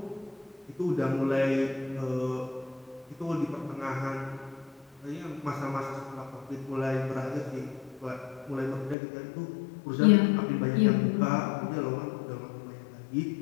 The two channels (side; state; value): right; drops out; at 9.0 s